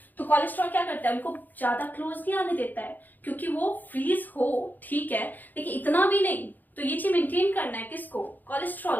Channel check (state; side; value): late; right; 0.085 ms